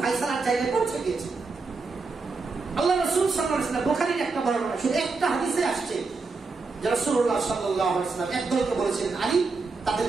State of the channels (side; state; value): left; quieter; 4.2 dB